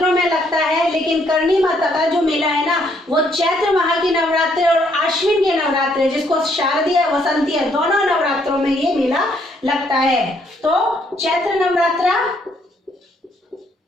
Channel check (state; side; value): normal; both; correlation 0.69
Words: में लगता है, लेकिन करणी माता का जो मेला है ना, वो चैत्र माह की नवरात्रि और आश्विन के नवरात्रि, जिसको शारदीय वसंतीय दोनों नवरात्रों में ये मेला लगता है। तो चैत्र नवरात्रा